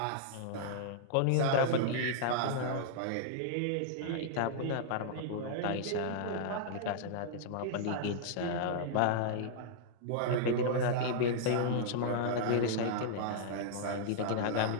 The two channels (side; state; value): both; different; correlation -0.01